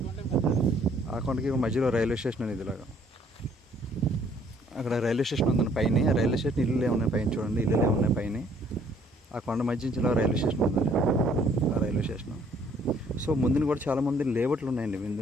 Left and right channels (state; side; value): normal; both; correlation 0.62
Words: ఆ కొండకి మధ్యలో రైల్వే స్టేషన్ అనేది. ఇలాగా అక్కడ రైల్వే స్టేషన్ ఉందండి పైన. రైల్వే స్టేషన్ ఇల్లు ఏమున్నాయి పైన చూడండి. ఇల్లు ఏమున్నాయి పైన. ఆ కొండ మధ్య నుంచి ఇలా రైల్వే స్టేషన్ ఉంది. ఆ రైల్వే స్టేషన్. సో ముందుని కూడా చాలామంది లేఅవుట్లు ఉన్నాయండి.